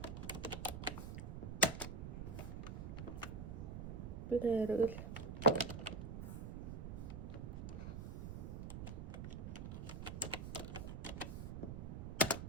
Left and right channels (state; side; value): noise; right; rumble, 6 dB below the sound